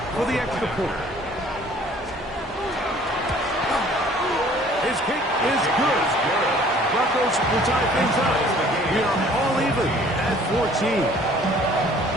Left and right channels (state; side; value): normal; both; correlation 0.54